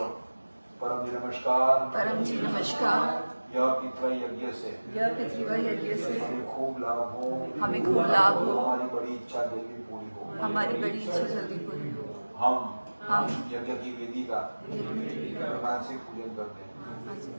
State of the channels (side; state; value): both; inverted; correlation -1.00